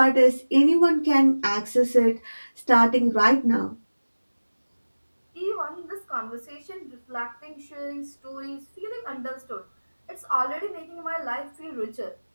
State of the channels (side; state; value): both; inverted; correlation -1.00